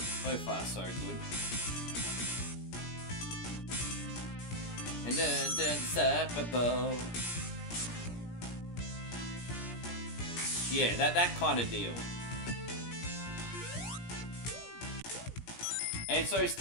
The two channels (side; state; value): right; late; 17 ms